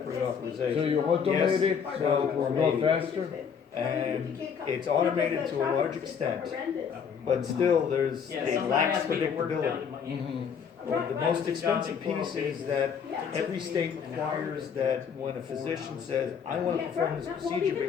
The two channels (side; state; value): right; quieter; 7.0 dB